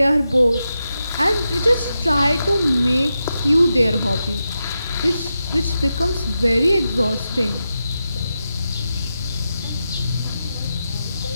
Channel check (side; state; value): both; inverted; correlation -0.89